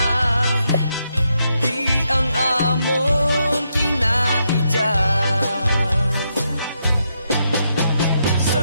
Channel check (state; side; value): inverted; both; correlation -0.80